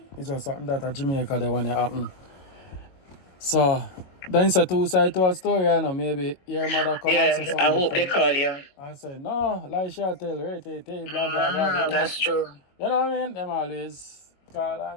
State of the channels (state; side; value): late; right; 22 ms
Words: It's just something that a Jamaica they want to happen. So then it's a two side to a story, you know. Maybe your mother come and say something. I hope they call you. And say, no, like she tell, right, blah, blah, blah. That's true. You know what I mean? Them always call